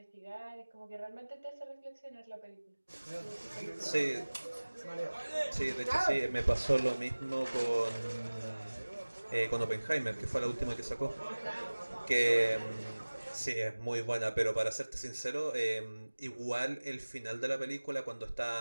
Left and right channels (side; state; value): both; inverted; correlation -1.00